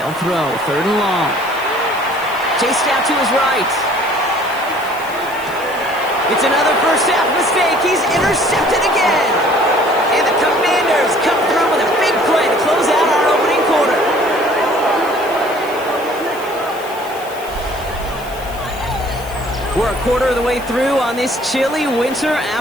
throw. 3rd and long. Chased out to his right. It's another first half mistake. He's intercepted again. And the Commanders come through with a big play to close out our opening quarter. We're a quarter of the way through on this chilly winter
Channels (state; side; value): noise; left; hiss, 19 dB below the sound